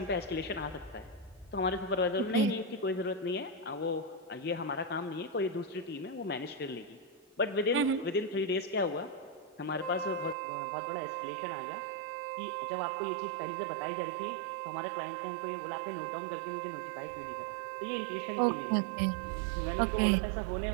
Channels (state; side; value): drops out; left; at 10.4 s